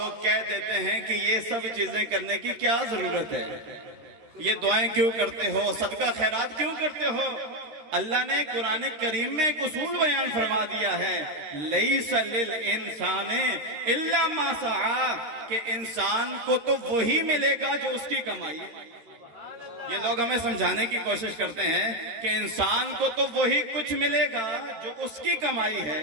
کہہ دیتے ہیں کہ یہ سب چیزیں کرنے کی کیا ضرورت ہے، یہ دعائیں کیوں کرتے ہو، صدقہ خیرات کیوں کرتے ہو. اللہ نے قرآن کریم میں ایک اصول بیان فرما دیا ہے لیس للانسان الا ما سعی، کہ انسان کو تو وہی ملے گا جو اس کی کمائی ہے. یہ لوگ ہمیں سمجھانے کی کوشش کرتے ہیں کہ انسان کو تو وہی کچھ ملے گا جو اس کی کمائی ہے.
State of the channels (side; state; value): left; late; 13 ms